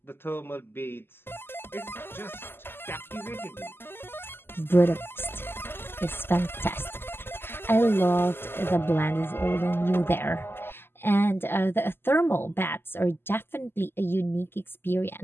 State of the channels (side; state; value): right; late; 0.11 ms